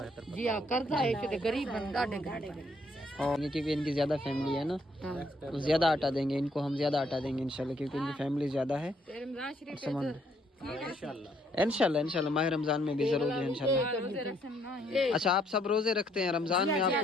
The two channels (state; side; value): normal; both; correlation 0.69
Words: जी हाँ कर्जा है कि गरीब बंदा डेंगे। और क्योंकि इनकी ज़्यादा फैमिली है ना, तो ज़्यादा आटा देंगे इनको, हम ज़्यादा आटा देंगे इंशाल्लाह, क्योंकि इनकी फैमिली ज़्यादा है। इंशाल्लाह माह रमज़ान में भी ज़रूर है इंशाल्लाह। अच्छा, आप सब रोज़े रखते हैं? रमज़ान में